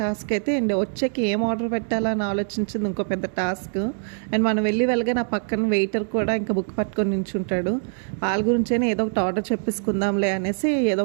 టాస్క్ అయితే, అండ్ వచ్చాక ఏం ఆర్డర్ పెట్టాలా అని ఆలోచించింది ఇంకో పెద్ద టాస్క్. అండ్ మనం వెళ్ళగా నా పక్కన వెయిటర్ కూడా ఇంకా బుక్ పట్టుకొని నించుంటాడు. వాళ్ళ గురించైనా ఏదో ఒకటి ఆర్డర్ చెప్పేసుకుందాంలే అనేసి ఏదో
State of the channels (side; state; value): left; silent; digital silence